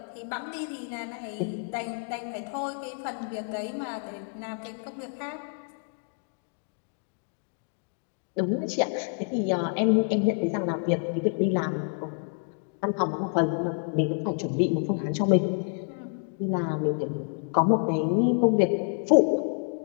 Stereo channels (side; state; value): right; silent; 57 dB below the other